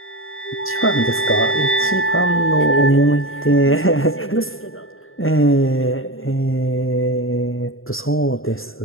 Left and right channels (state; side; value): late; right; 0.61 ms